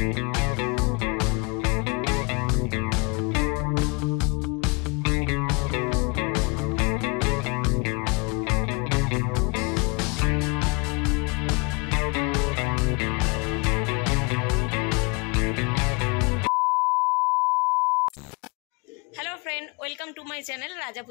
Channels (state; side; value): quieter; right; 29.9 dB